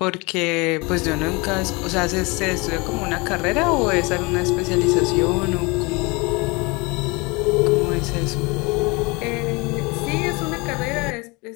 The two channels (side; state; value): right; quieter; 26.7 dB